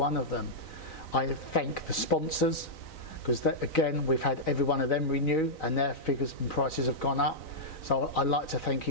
of them. I thank the sponsors, because again, we've had every one of them renew, and their figures and prices have gone up. So I'd like to thank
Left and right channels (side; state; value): right; late; 3.9 ms